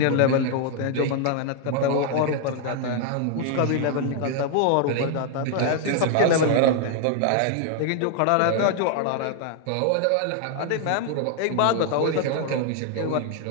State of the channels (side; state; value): both; different; correlation 0.00